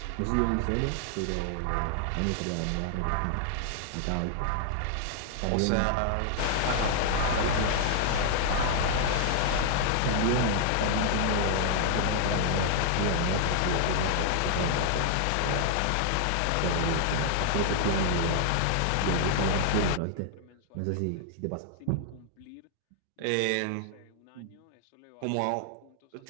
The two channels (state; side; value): different; both; correlation 0.00